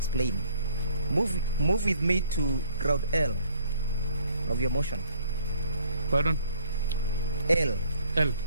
Move with me to ground L of your motion. Pardon? L. L.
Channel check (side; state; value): both; inverted; correlation -0.59